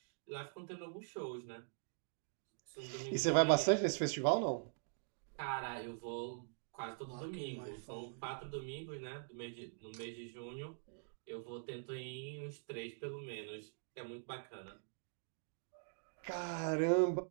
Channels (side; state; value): left; silent; digital silence